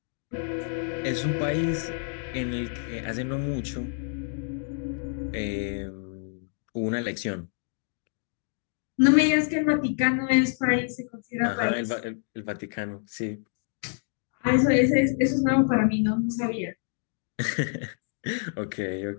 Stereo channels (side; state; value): right; silent; 60 dB below the other